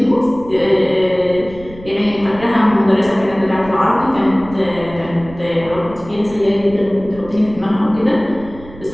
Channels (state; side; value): noise; right; rumble, 17 dB below the sound